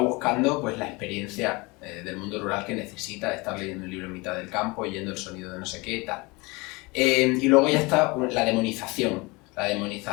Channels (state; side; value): quieter; right; 25.5 dB